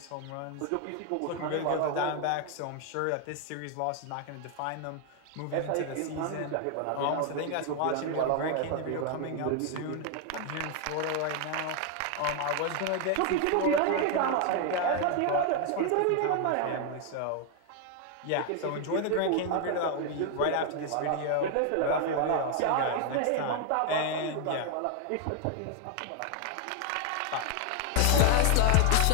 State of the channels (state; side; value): different; both; correlation 0.00